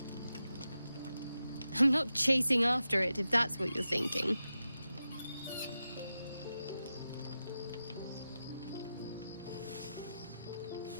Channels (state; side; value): inverted; both; correlation -0.91